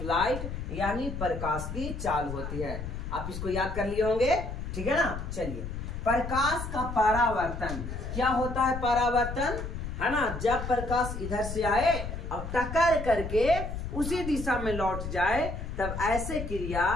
लाइट, यानी प्रकाश की चाल होती है। आप इसको याद कर लिए होंगे, ठीक है ना। चलिए, प्रकाश का परावर्तन क्या होता है? परावर्तन, है ना, जब प्रकाश इधर से आए और टक्कर करके उसी दिशा में लौट जाए, तब ऐसे क्रिया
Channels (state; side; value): noise; left; rumble, 6 dB below the sound